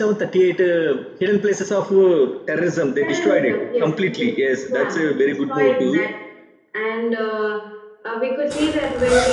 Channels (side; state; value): both; identical; correlation 1.00